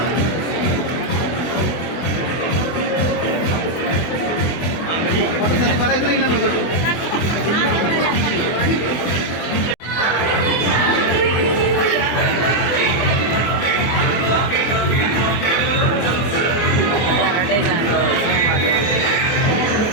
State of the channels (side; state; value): right; late; 24 ms